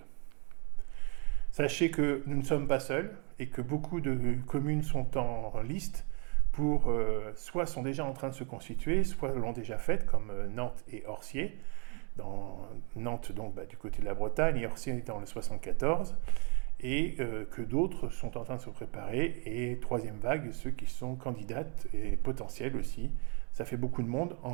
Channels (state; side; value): quieter; left; 35.2 dB